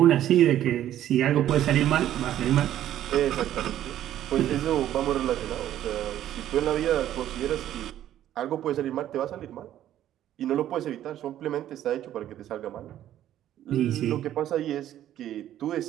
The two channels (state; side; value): quieter; left; 12.0 dB